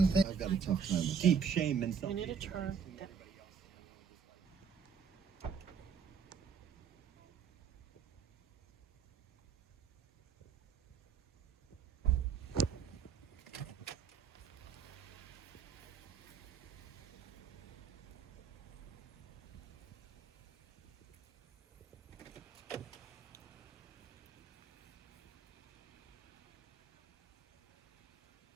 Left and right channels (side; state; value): left; quieter; 6.8 dB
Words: thing? I've got a tough time with deep shame and We need to turn.